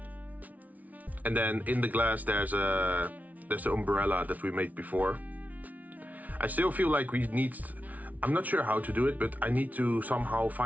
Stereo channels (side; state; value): left; late; 0.073 ms